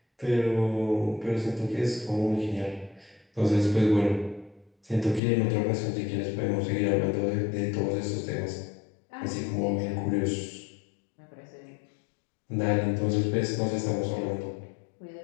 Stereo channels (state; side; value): drops out; right; at 5.2 s